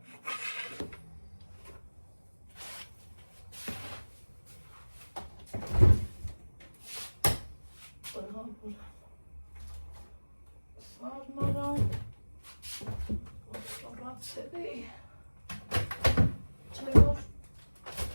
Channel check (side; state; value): both; inverted; correlation -1.00